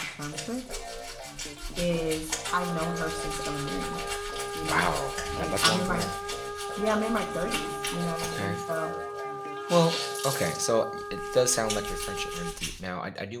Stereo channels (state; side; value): identical; both; correlation 1.00